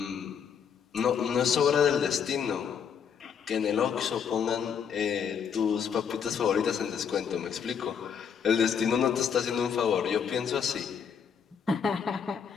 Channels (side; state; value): right; quieter; 7.3 dB